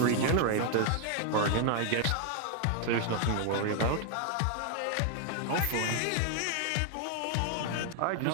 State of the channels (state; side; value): different; both; correlation 0.00